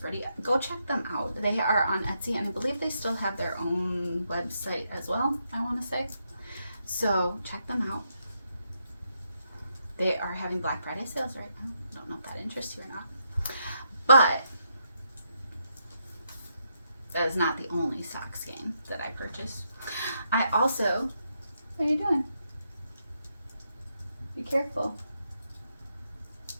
pretty? Go check them out. They are on Etsy, and I believe they still have their own website as well, I want to say. So check them out. They are having Black Friday sales right now. I don't know if that interests you or not. But that is not the only sock skein that I purchased. I also, what are you doing? Be careful.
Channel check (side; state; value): both; inverted; correlation -0.80